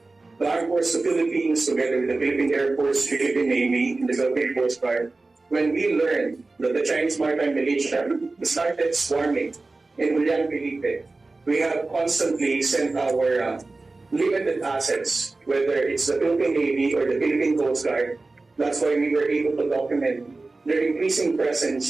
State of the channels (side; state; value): left; quieter; 3.4 dB